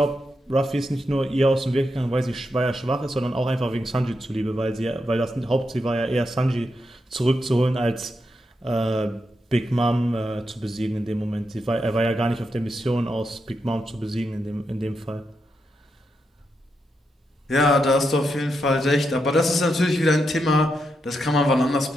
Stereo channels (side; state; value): both; normal; correlation 0.84